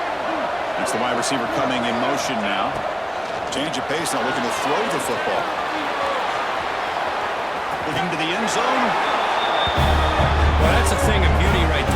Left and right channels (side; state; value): both; identical; correlation 1.00